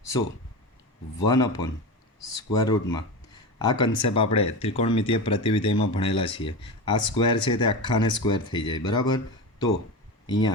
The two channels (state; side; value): normal; both; correlation 0.23